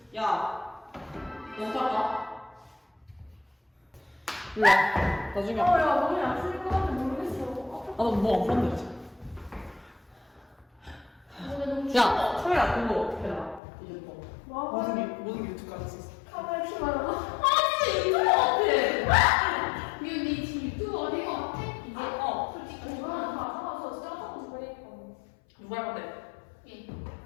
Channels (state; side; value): drops out; right; at 13.6 s